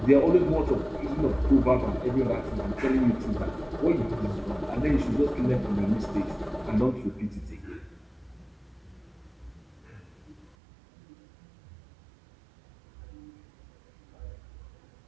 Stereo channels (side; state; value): left; drops out; at 10.6 s